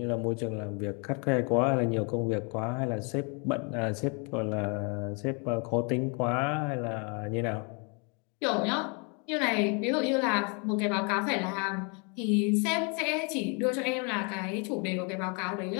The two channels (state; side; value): quieter; right; 34.5 dB